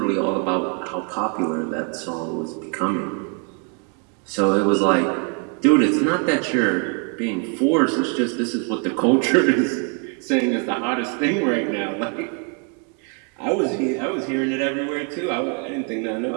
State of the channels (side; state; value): left; quieter; 37.1 dB